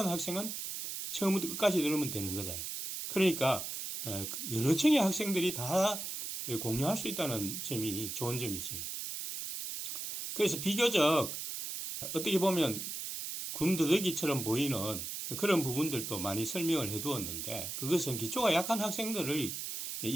학생은 처음부터 끝까지 들으면 되는 거다. 그러니까 여러 층의 학생들이 다 공유할 수 있다는 점이 좋은 점이지. 그래서 비교적 어떻게 보면 군더더기처럼 보이는 그런 부분들도 많이 설명을 해두었는데, 그것은 기초가 약한 학생들을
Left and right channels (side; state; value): right; noise; hiss, 5 dB below the sound